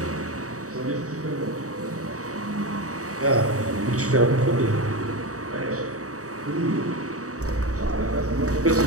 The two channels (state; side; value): late; left; 0.66 ms